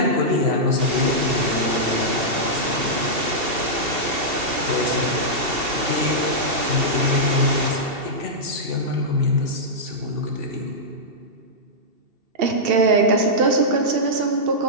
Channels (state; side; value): late; left; 2.7 ms